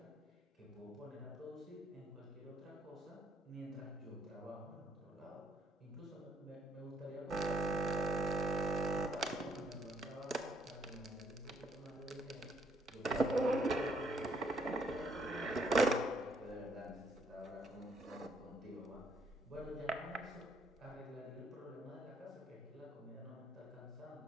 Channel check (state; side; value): normal; both; correlation 0.69